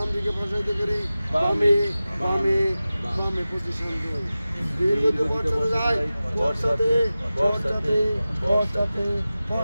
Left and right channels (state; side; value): inverted; both; correlation -0.96